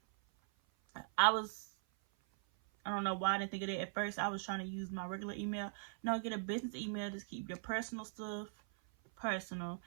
I don't know why I didn't think of it at first. I was trying to use my regular email. No, get a business email. Just keep your personal stuff personal,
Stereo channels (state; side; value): silent; left; 51 dB below the other